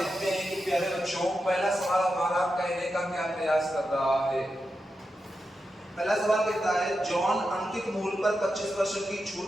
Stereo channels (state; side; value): normal; both; correlation 0.88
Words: हैं कि प्यारे बच्चों, पहला सवाल हमारा कहने का क्या प्रयास कर रहा है। पहला सवाल कहता है, जॉन अंकित मूल्य पर 25% की छूट